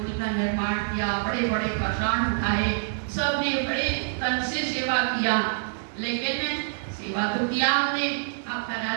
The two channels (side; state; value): left; silent; digital silence